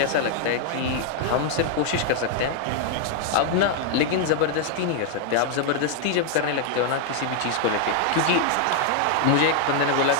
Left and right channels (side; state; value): both; different; correlation 0.00